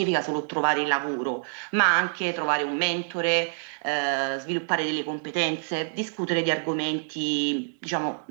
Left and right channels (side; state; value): left; silent; digital silence